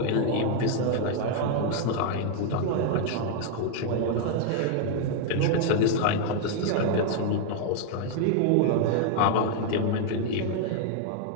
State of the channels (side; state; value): both; different; correlation 0.00